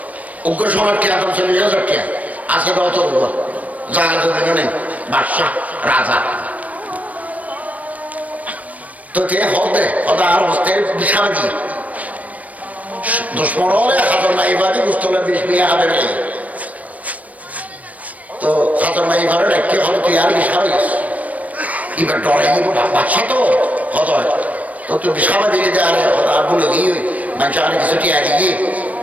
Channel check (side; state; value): left; late; 0.070 ms